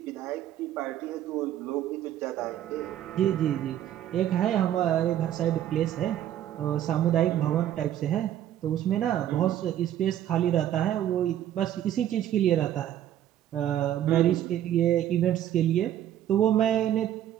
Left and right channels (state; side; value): quieter; left; 11.5 dB